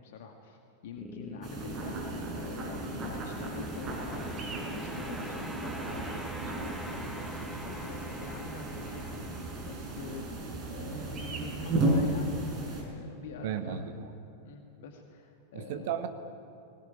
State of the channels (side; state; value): both; normal; correlation 0.05